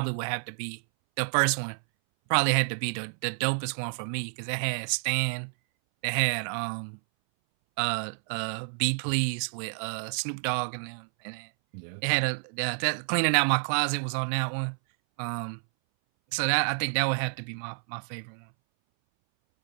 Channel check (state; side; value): silent; left; 59 dB below the other